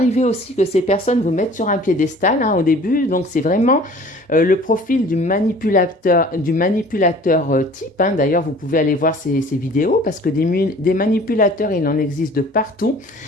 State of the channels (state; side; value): normal; both; correlation 0.48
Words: aussi que ces personnes vous mettent sur un piédestal au début. Donc, c'est vraiment le profil du manipulateur type. D'ailleurs, vous pouvez aller voir ces vidéos parce que des manipulateurs, il en existe de partout,